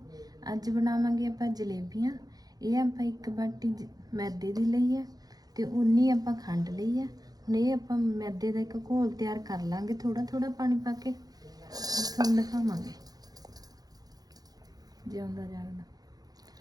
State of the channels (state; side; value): late; left; 0.19 ms